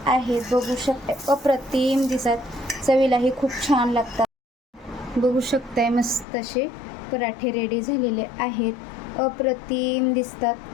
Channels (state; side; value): drops out; right; at 6.2 s